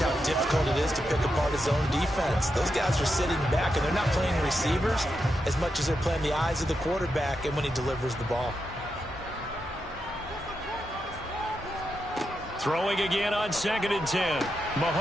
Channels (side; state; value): both; normal; correlation 0.86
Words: how difficult it is to pick apart his own defense. Those guys are sitting back, and they're not playing receivers as much as they're playing the eyes of the quarterback and when he delivers the ball. Throwing again on 2nd and 10.